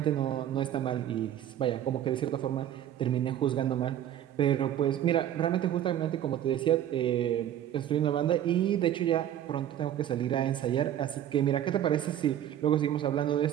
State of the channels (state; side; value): quieter; left; 11.1 dB